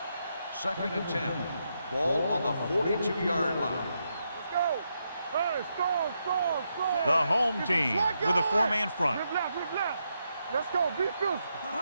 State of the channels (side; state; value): both; inverted; correlation -0.82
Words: Second and 10. Ball on the 42-yard line. Let's go. Hey, storm. The home Get team the flag with a going. four-man front. Rip left. Let's go. Be physical.